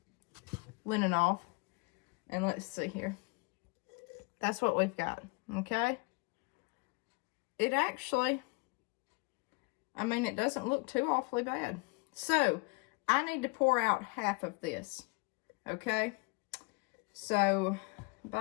linen off. And let's see here. That's what we've got, okay? It actually, I mean, it doesn't look too awfully bad. So, I need to pour out half of this, okay? So,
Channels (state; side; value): quieter; right; 28.9 dB